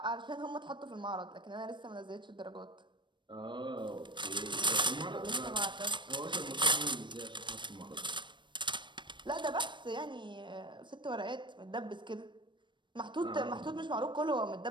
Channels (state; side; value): late; left; 0.22 ms